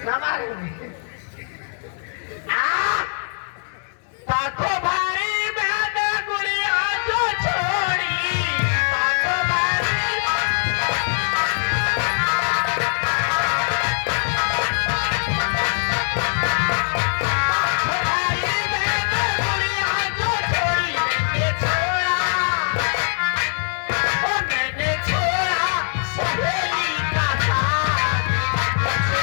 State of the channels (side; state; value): right; silent; digital silence